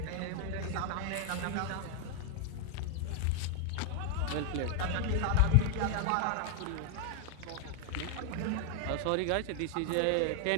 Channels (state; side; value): different; both; correlation 0.00